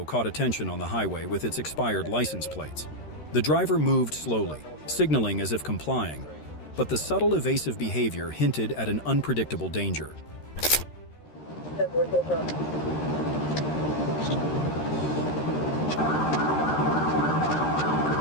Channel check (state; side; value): late; right; 13 ms